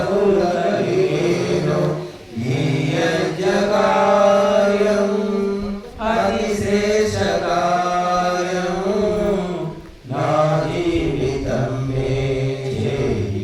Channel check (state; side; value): identical; both; correlation 1.00